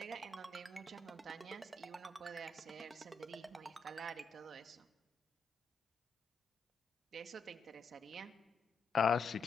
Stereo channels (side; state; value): right; quieter; 4.0 dB